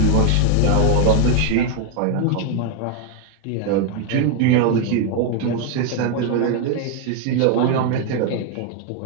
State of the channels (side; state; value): both; different; correlation 0.01